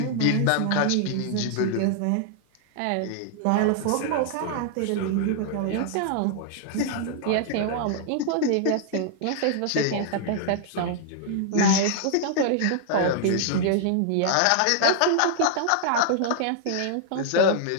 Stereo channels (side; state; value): both; different; correlation -0.01